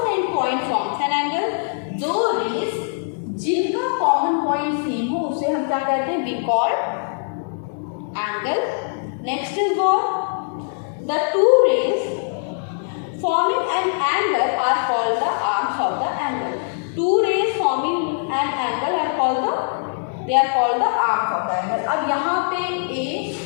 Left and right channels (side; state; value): right; silent; 64 dB below the other